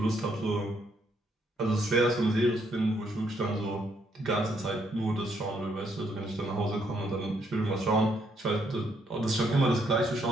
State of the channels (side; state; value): both; normal; correlation 0.73